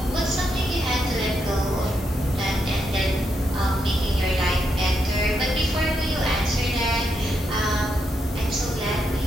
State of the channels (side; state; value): both; normal; correlation 0.81